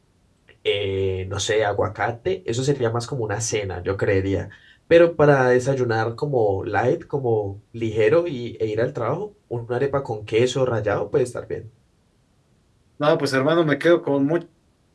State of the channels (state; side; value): identical; both; correlation 1.00